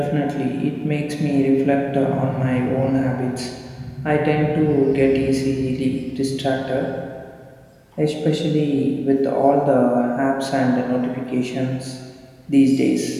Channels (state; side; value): identical; both; correlation 1.00